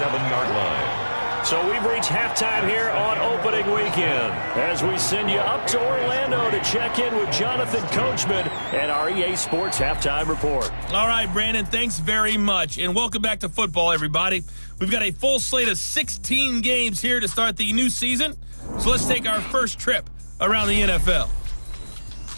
line. So we've reached halftime here on opening weekend as we send you up to Orlando to check in with Jonathan Coachman and our EA Sports Halftime Report. All right, Brandon, thanks very much. And welcome back to football, everybody. We've got a full slate of 16 games here to start the new season. So let's take our first trip around the NFL.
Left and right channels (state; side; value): inverted; both; correlation -1.00